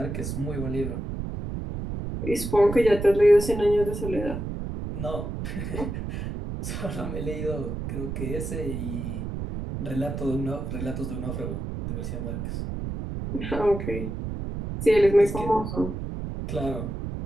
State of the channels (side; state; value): right; noise; rumble, 5 dB below the sound